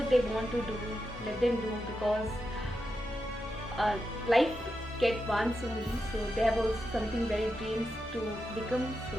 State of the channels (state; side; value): normal; both; correlation 0.87